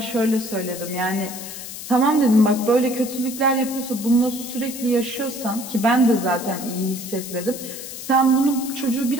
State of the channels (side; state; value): left; noise; hiss, 10 dB below the sound